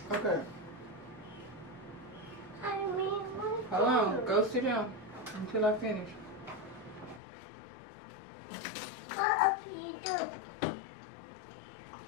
Okay. I mean, Hold on. Go sit down until I finish. what you do?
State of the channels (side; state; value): right; drops out; at 7.2 s